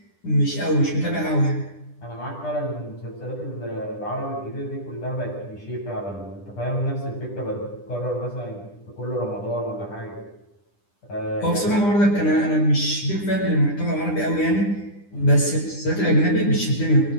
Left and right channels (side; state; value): right; late; 9.9 ms